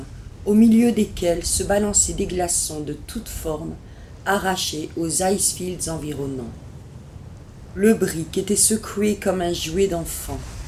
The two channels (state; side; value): identical; both; correlation 1.00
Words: au milieu desquelles se balançaient des glaçons de toutes formes, arrachés aux icefields environnants. Le brick était secoué comme un jouet d'enfant,